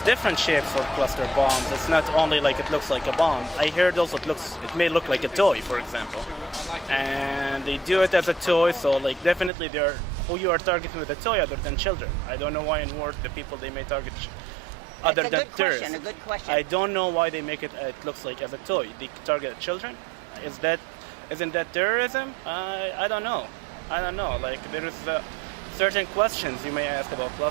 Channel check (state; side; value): drops out; left; at 9.5 s